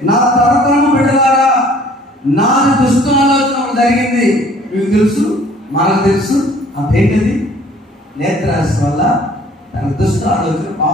నా తరతరము బిడ్డలారా నాది దుష్ట ఆలోచన జరిగింది. మీకు తెలుసు, మనకు తెలుసు. అదేంటది? నేత్రాశ వల్ల తన దుష్ట ఆలోచన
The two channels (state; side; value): normal; both; correlation 0.55